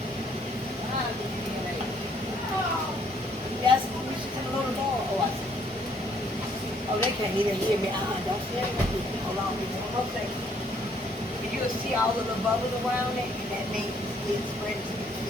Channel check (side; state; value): both; normal; correlation 0.66